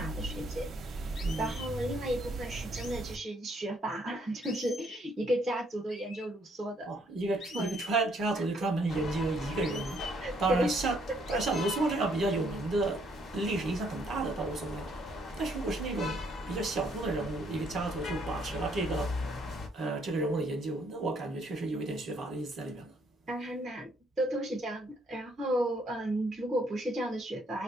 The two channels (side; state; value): both; normal; correlation 0.68